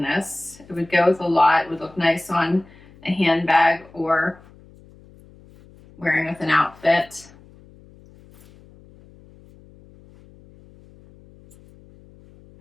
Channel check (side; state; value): left; noise; hum, 25 dB below the sound